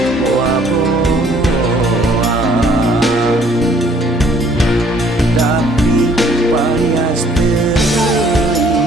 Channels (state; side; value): normal; both; correlation 0.60